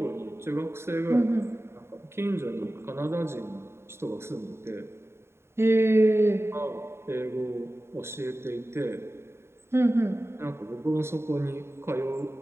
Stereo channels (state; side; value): late; left; 0.12 ms